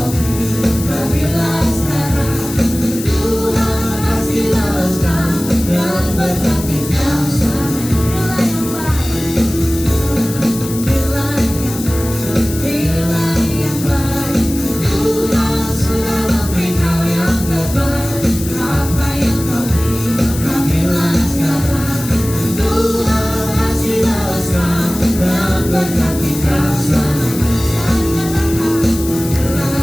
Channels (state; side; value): noise; left; hiss, 11 dB below the sound